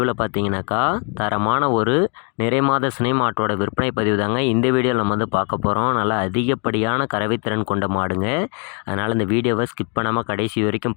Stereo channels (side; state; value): right; quieter; 37.7 dB